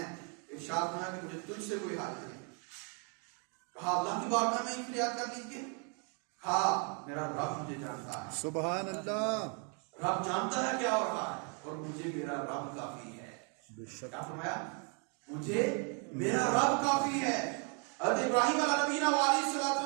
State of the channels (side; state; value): left; quieter; 37.8 dB